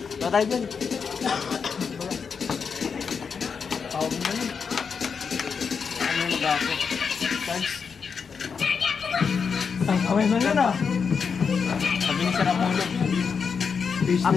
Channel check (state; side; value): quieter; right; 5.9 dB